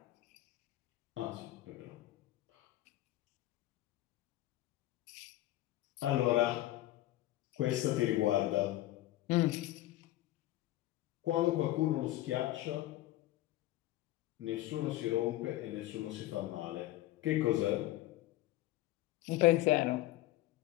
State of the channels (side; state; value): right; quieter; 15.8 dB